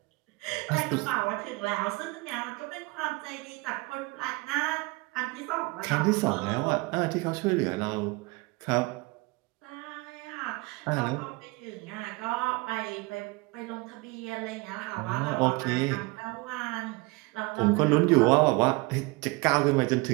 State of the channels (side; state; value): left; quieter; 24.9 dB